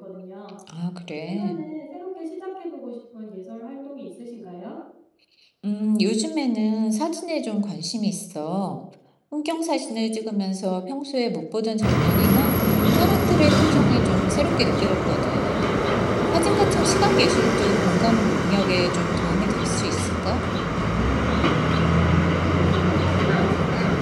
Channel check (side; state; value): both; identical; correlation 1.00